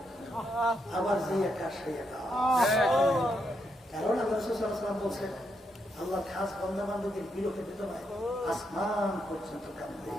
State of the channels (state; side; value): normal; both; correlation 0.80